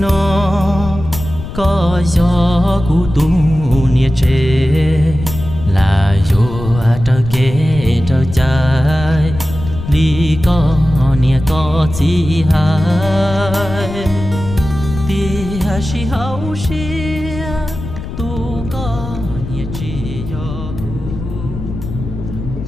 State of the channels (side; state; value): left; noise; rumble, 9 dB below the sound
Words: nó có gió cụ tu nia chê là vô trơ kê trơ trái đi có nia có chi hai tia si hậu xia tu có nia chi yo